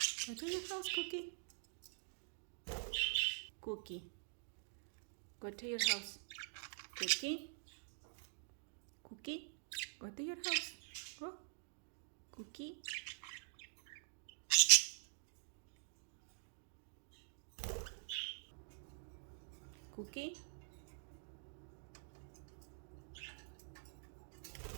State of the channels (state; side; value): silent; left; digital silence